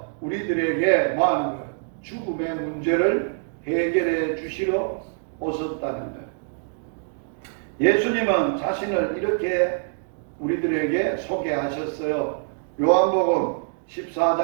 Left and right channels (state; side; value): silent; left; digital silence